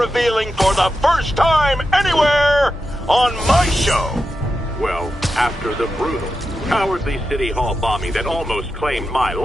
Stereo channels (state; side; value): normal; both; correlation 0.90